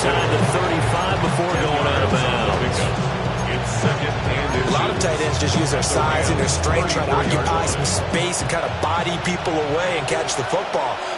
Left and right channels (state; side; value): identical; both; correlation 1.00